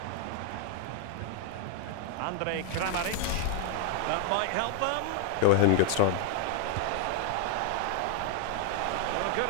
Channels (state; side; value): different; both; correlation 0.01